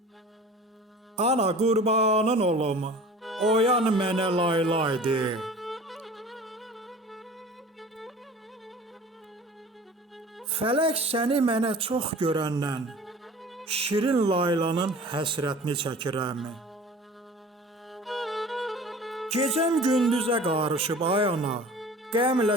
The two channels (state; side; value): normal; both; correlation 0.42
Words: Ana qurbanın olum, oyan mənə laylaydı. Fələk səni mənə çox görəndən, şirin laylanın həsrətini çəkirəm. Gecəm gündüzə qarışıb ay ana,